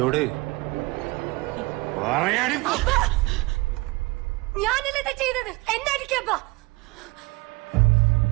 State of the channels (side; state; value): left; quieter; 23.5 dB